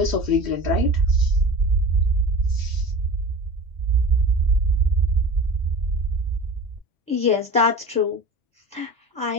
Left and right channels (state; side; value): normal; both; correlation 0.35